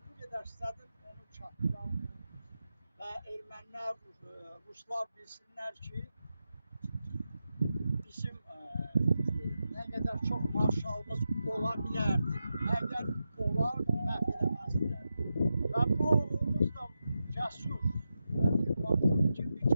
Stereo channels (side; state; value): both; inverted; correlation -0.89